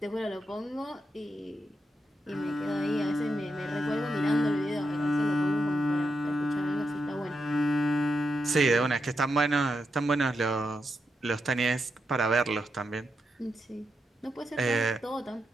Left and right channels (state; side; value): normal; both; correlation 0.84